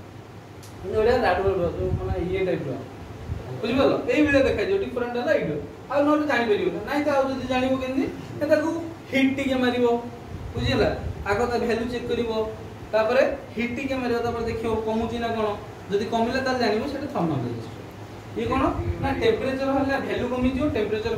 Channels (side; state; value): both; identical; correlation 1.00